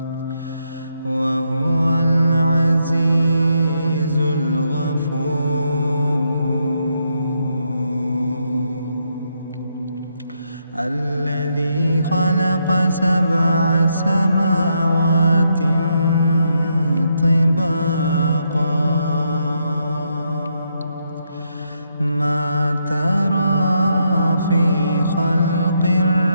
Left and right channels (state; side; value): inverted; both; correlation -0.78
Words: وهو العزيز الغفور. الذي خلق 7 سماوات طباقا ما ترى في خلق